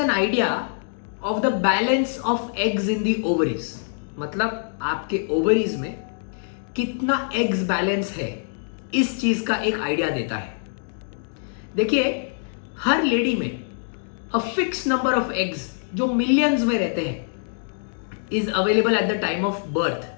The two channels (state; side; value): silent; right; digital silence